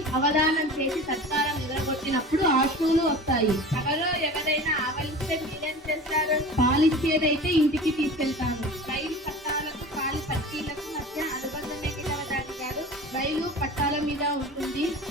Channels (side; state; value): both; normal; correlation 0.36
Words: అవధానం చేసి సత్కారం ఎగరగొట్టినప్పుడు ఆశువులు వస్తాయి. సభలో ఎవరైనా ఆవలిస్తే మీరేం చేస్తారు? పాలిచ్చేదైతే ఇంటికి తీసుకెళ్తాను. రైలు పట్టాలకు కాలి పట్టీలకు మధ్య అనుబంధం ఏమిటి అవధాని గారు? రైలు పట్టాల మీద ఉంటుంది,